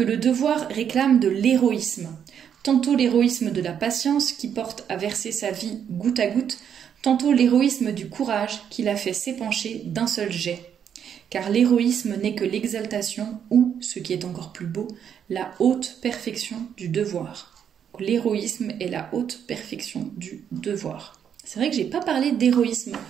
le devoir réclame de l'héroïsme. Tantôt l'héroïsme de la patience qui porte à verser sa vie goutte à goutte, tantôt l'héroïsme du courage qui la fait s'épancher d'un seul jet. Car l'héroïsme n'est que l'exaltation ou, ce qui est encore plus beau, la haute perfection du devoir. L'héroïsme est la haute perfection du devoir. C'est vrai que j'ai pas parlé d'héroïsme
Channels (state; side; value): quieter; left; 8.4 dB